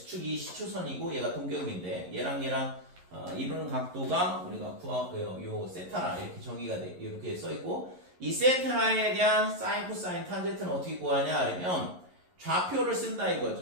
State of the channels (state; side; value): late; left; 11 ms